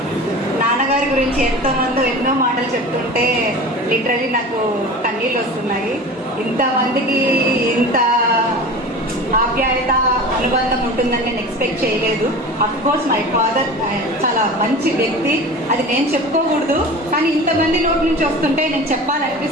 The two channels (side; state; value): both; normal; correlation 0.35